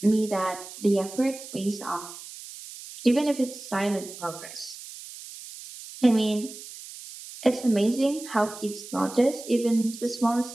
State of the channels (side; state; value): right; noise; hiss, 14 dB below the sound